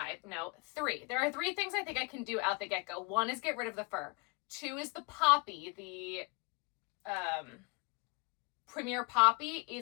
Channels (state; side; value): quieter; right; 28.9 dB